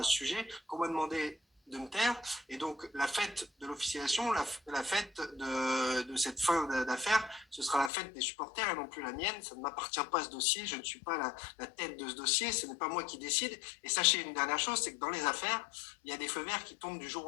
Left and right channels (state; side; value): drops out; right; at 7.9 s